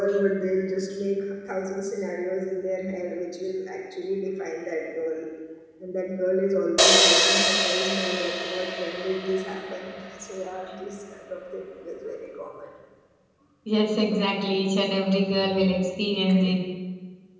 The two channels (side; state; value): both; identical; correlation 1.00